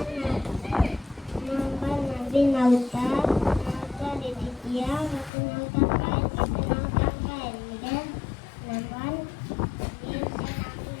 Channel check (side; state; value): right; drops out; at 5.3 s